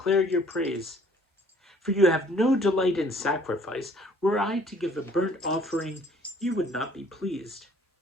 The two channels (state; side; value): normal; both; correlation 0.57